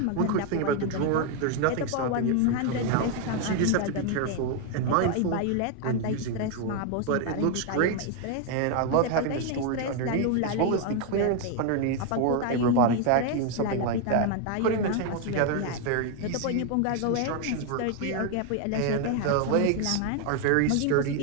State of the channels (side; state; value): both; different; correlation 0.01